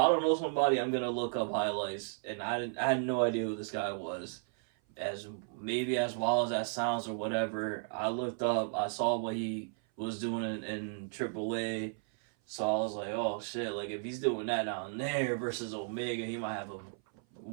don't know somebody, I'm gonna look up highlights, and I had no idea who this guy was. As maybe as wild as that sounds or whatever, I looked up, I saw what he was doing in AAA, so I was like, oh shit, like if he's doing that down there versus Omega, he might have a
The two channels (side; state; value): left; silent; 55 dB below the other